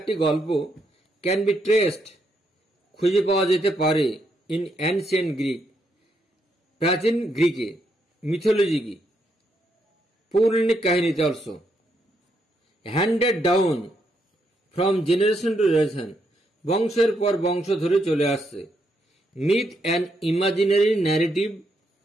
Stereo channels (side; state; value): both; normal; correlation 0.77